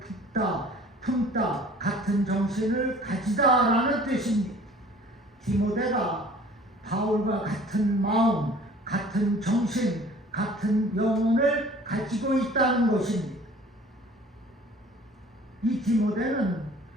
품다 같은 정신을 가지다라는 뜻입니다. 디모데가 바울과 같은 마음, 같은 정신, 같은 영혼을 가지고 있다는 것입니다. 이 디모데는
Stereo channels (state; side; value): normal; both; correlation 0.49